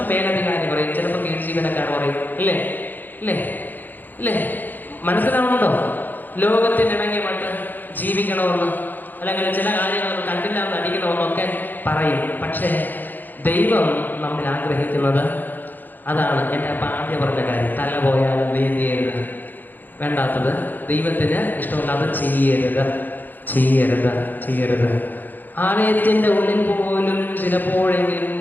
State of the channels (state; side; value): late; right; 0.087 ms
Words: മേലധികാരി പറയും, ചിലപ്പോൾ കീഴ് ജീവനക്കാർ പറയും. ഇല്ലേ? മനസ്സിലാവുന്നുണ്ടോ? ലോകത്തിനിണങ്ങി മറ്റ് ജീവിക്കണമെന്ന്, അല്ലെങ്കിൽ ചില കാര്യങ്ങൾ കണ്ടില്ല എന്ന് അടിക്കണമെന്നൊക്കെ പറയും. പക്ഷേ ദൈവം നമ്മൾ ആഗ്രഹിക്കുന്നത് അതാണ്. എൻ്റെ അപ്പം ആദ്യം പറഞ്ഞ കാര്യം, തല പോയാലും നീന്തിയരുത്, വേണ്ടാത്തത് ദൈവത്തിന് ഇഷ്ടമല്ലാതെ ചെയ്യരുത്. ആലയത്തിൻ്റെ ഉള്ളിൽ പോലും ചിലപ്പോഴെങ്കിലും